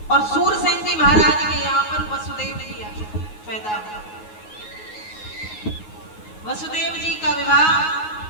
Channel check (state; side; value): late; right; 9.5 ms